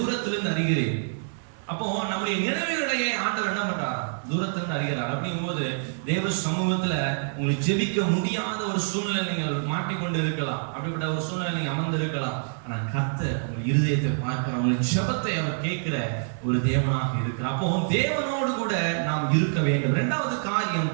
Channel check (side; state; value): left; silent; digital silence